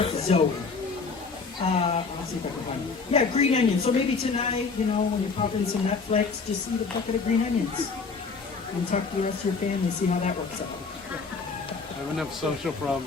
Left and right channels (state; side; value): quieter; right; 4.7 dB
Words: Zoe. Let's see if I can find it. Yeah, green onions. So maybe tonight, you know, when you're popping some Netflix, just eat a bucket of green onions and talk to the rest of your family, see how that works out. I have enough social